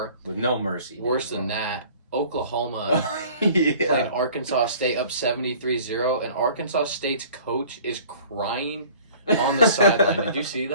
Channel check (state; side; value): inverted; both; correlation -0.49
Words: with no mercy. worse than that, Oklahoma Yeah. playing Arkansas State up 73-0, and Arkansas State's coach is crying on the sideline. Did you see